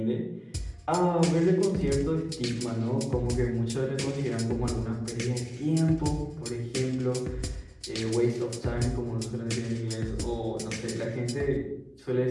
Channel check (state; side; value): identical; both; correlation 1.00